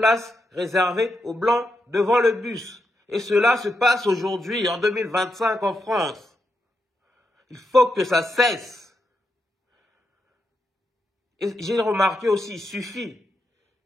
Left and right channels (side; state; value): both; normal; correlation 0.83